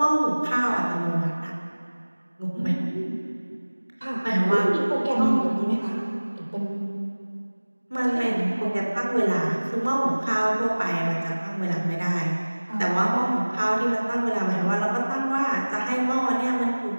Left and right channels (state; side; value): inverted; both; correlation -1.00